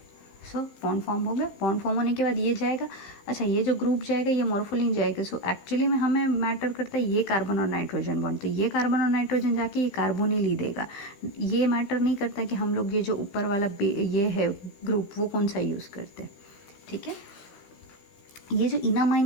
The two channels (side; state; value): right; late; 15 ms